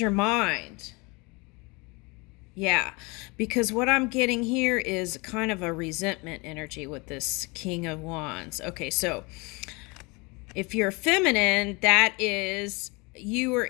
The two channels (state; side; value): quieter; right; 27.3 dB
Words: mind. Yeah, because what I'm getting here is kind of a resentment energy with this King of Wands. Okay, so if you're feminine, that is you are